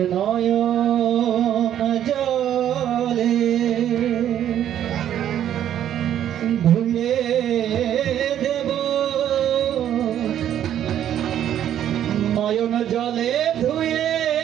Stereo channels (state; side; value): quieter; left; 10.7 dB